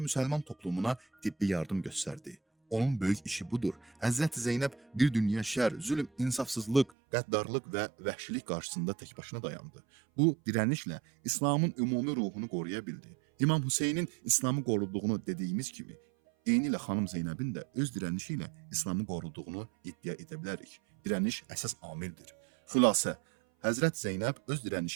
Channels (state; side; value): drops out; left; at 6.9 s